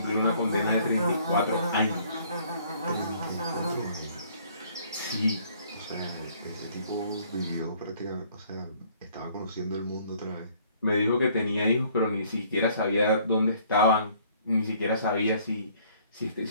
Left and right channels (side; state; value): both; inverted; correlation -0.60